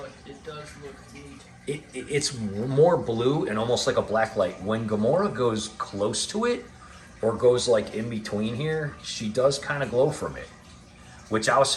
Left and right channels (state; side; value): identical; both; correlation 1.00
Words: it does look neat. It's more blue and almost like a black light. When Gamora goes close to it, or goes like in between here, she does kind of glow from it. which I was